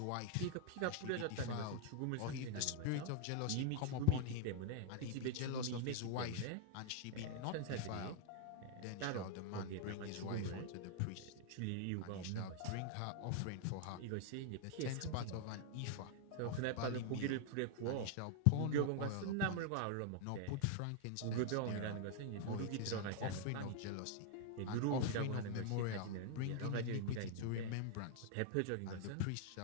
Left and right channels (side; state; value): both; different; correlation 0.00